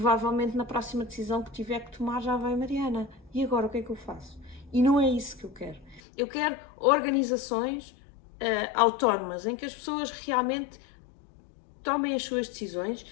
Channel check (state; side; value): drops out; right; at 6.0 s